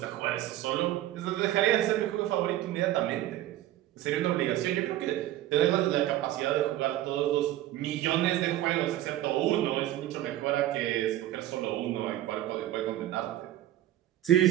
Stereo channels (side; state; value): left; quieter; 13.9 dB